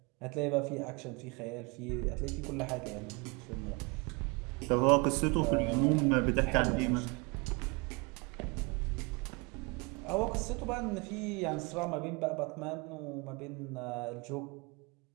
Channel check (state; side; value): quieter; left; 28.9 dB